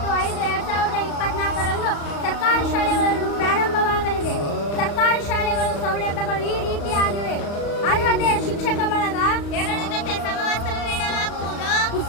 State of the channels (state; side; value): late; right; 35 ms